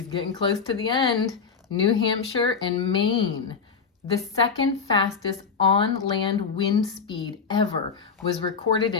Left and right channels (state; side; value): quieter; right; 5.6 dB